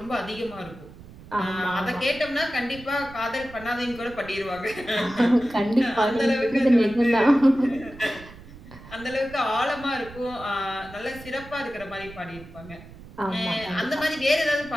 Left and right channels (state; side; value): noise; right; rumble, 18 dB below the sound